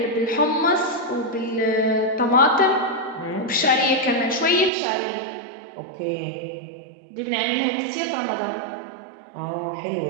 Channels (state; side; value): drops out; left; at 4.7 s